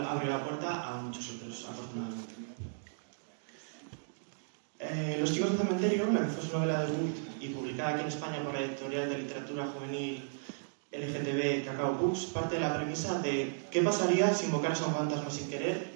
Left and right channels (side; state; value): left; silent; digital silence